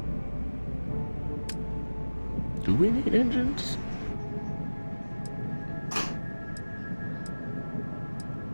do we need engines?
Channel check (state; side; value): inverted; both; correlation -1.00